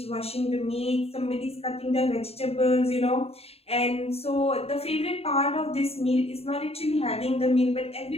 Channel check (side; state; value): right; late; 0.29 ms